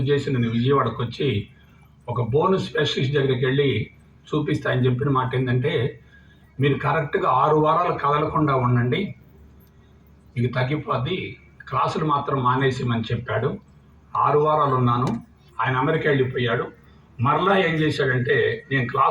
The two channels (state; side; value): identical; both; correlation 1.00